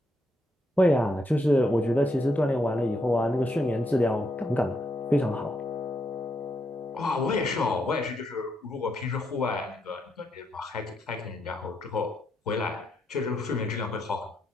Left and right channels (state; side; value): normal; both; correlation 0.79